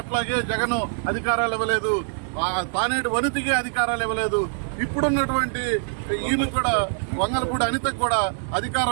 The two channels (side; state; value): left; silent; digital silence